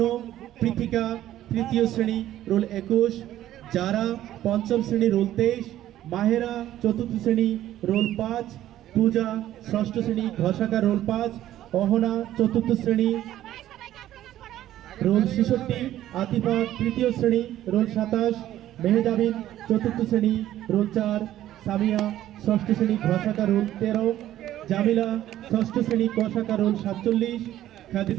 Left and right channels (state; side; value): quieter; left; 13.0 dB